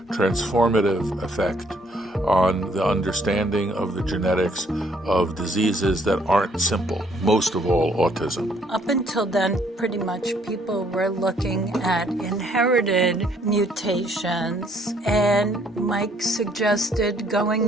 transformative effect on the understanding of the genetics of diseases that aren't simple, most of all autism. Up until then, pretty much people were looking at inherited mutations, and Mike suggested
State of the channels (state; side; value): normal; both; correlation 0.65